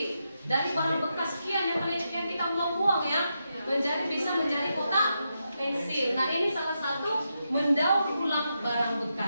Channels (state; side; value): inverted; both; correlation -0.85